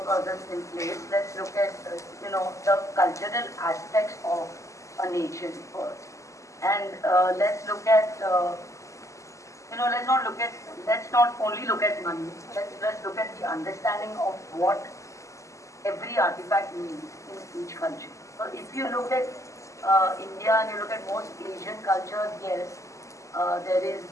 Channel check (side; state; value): right; late; 0.15 ms